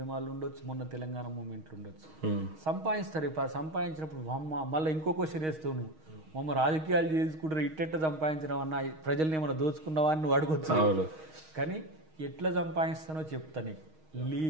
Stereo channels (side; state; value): left; late; 6.4 ms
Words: ఉండొచ్చు, మొన్న తెలంగాణ మూమెంట్లు ఉండొచ్చు. సంపాదిస్తారు. సంపాదించినప్పుడు మళ్ళీ ఇంకో క్వశ్చన్ వేస్తావు, నువ్వు మమ్మ రాజకీయాలు చేసుకుంటారు ఇట్టెట్ట సంపాదించడం అన్న, ప్రజల్ని ఏమైనా దోచుకున్నావా అని నువ్వు అడగొచ్చు. కానీ ఎట్లా సంపాదిస్తానో చెప్తా నీకు.